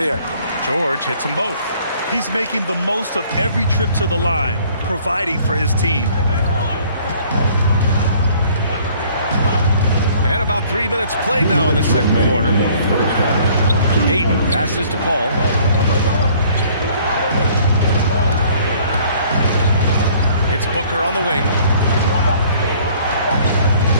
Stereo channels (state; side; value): inverted; both; correlation -0.57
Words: George hits them both. He's making the most of every trip to the line, providing for his team. And about 3 minutes played now in the second quarter. Ayton passes to Paul. It's Booker on the wing.